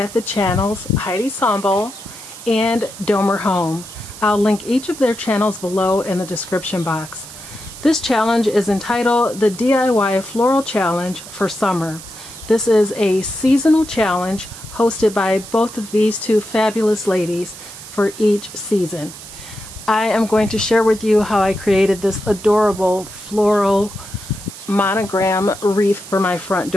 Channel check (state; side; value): noise; right; hiss, 15 dB below the sound